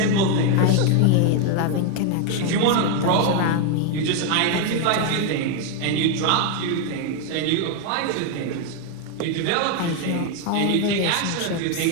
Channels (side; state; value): both; different; correlation 0.00